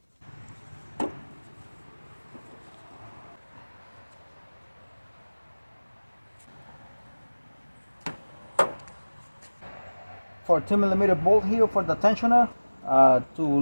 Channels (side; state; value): both; inverted; correlation -1.00